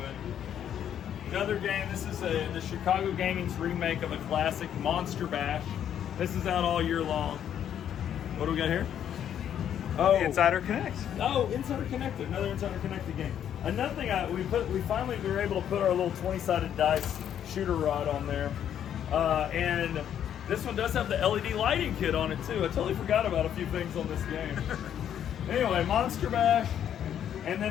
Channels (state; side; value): quieter; right; 9.7 dB